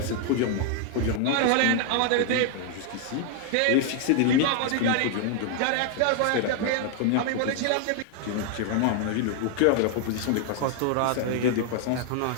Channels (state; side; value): different; both; correlation 0.00